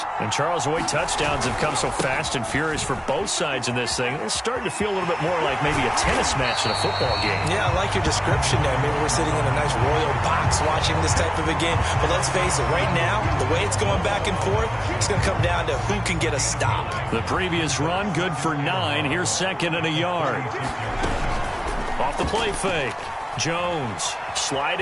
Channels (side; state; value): both; identical; correlation 1.00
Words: And Charles, the way touchdowns have come so fast and furious for both sides in this thing, it's starting to feel a little bit more like maybe a tennis match in a football game. Yeah, I like your description there. Maybe we're sitting in a nice royal box watching this type of a game. But let's face it, right now, the way it's going back and forth, it's going to come down to who can get a stop. The previous run, good for 9. Here's 2nd and a yard. Off the play fake. Jones